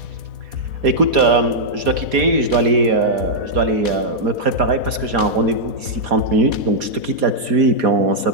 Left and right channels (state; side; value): late; left; 4.2 ms